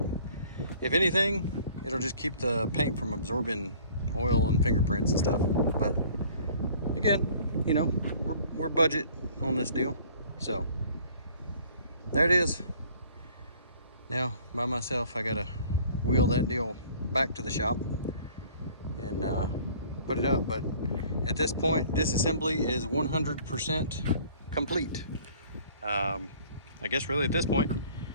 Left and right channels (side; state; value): both; inverted; correlation -0.53